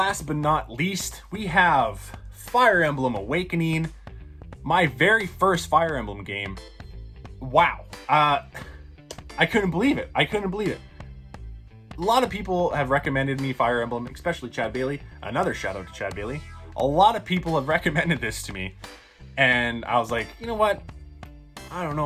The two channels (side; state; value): both; identical; correlation 1.00